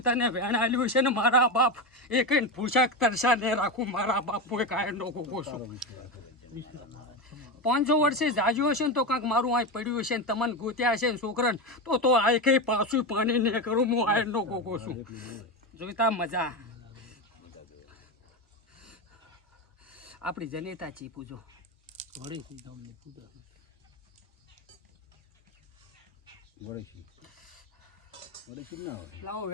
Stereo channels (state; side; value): normal; both; correlation 0.16